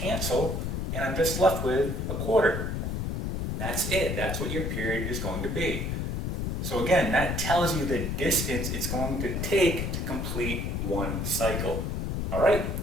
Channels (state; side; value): noise; left; rumble, 1 dB below the sound